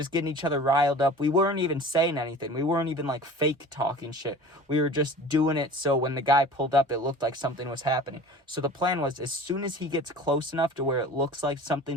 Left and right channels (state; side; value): normal; both; correlation 0.41